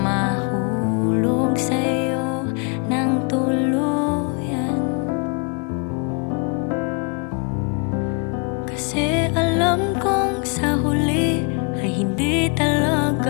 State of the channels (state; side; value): quieter; right; 35.2 dB